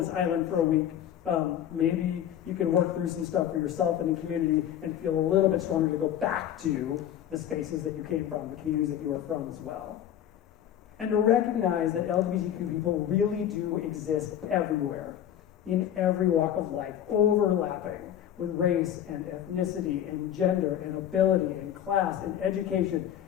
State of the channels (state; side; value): quieter; right; 10.5 dB